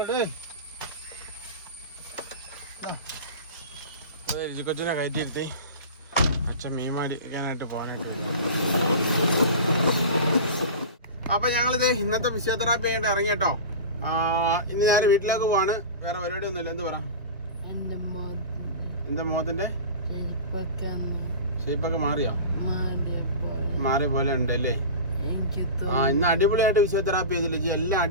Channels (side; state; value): both; inverted; correlation -0.31